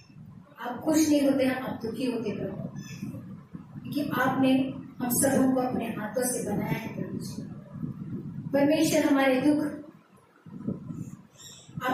आप खुश नहीं होते हैं, आप दुखी होते प्रभु, क्योंकि आपने हम सबों को अपने हाथों से बनाया है प्रभु। परमेश्वर हमारे दुख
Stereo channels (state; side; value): identical; both; correlation 1.00